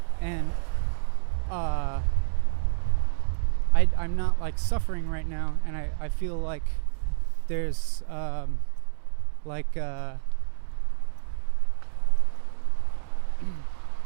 and I'm not like suffering right now, and I feel like there's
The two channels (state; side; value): silent; left; 60 dB below the other